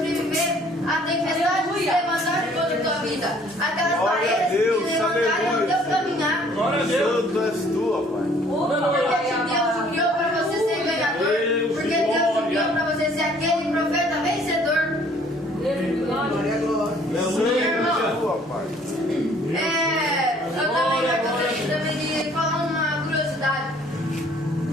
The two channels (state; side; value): normal; both; correlation 0.58